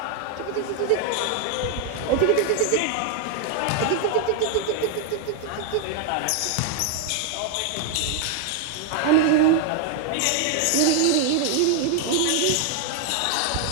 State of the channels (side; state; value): both; different; correlation 0.00